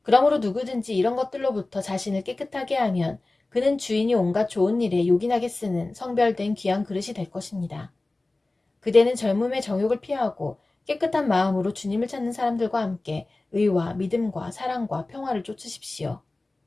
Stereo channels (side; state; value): right; quieter; 3.0 dB